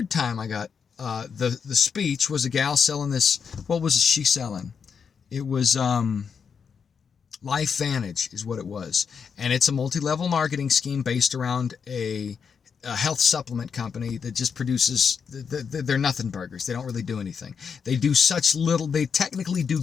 time I got the speech was a gal selling this. What was she selling? It was LifeVantage is what it was. And it's a multi-level marketing scheme based around a health supplement company that just produces, they're nothing burgers. They don't really do anything. They do such little, they technically do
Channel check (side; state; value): right; quieter; 6.4 dB